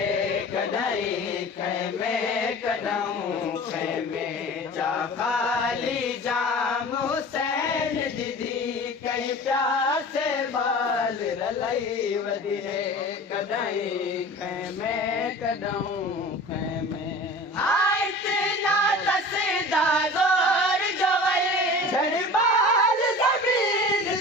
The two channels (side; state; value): both; normal; correlation 0.38